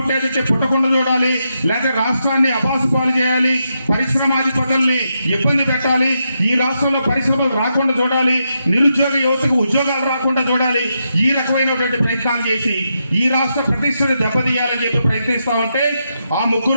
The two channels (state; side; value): inverted; both; correlation -0.83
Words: పుట్టకుండా చూడాలి, లేకపోతే రాష్ట్రాన్ని అబాసుపాలు చేయాలి, పరిశ్రమాధిపతుల్ని ఇబ్బంది పెట్టాలి, ఈ రాష్ట్రంలో పరిశ్రమలు రాకుండా చూడాలి, నిరుద్యోగ యువతకు ఉద్యోగాలు రాకుండా చూడాలి. ఈ రకమైనటువంటి ప్రయత్నాలు చేసి ఈ రాష్ట్ర ప్రతిష్టను దెబ్బతీయాలని చెప్పి ప్రయత్నిస్తా ఉంటే ఆ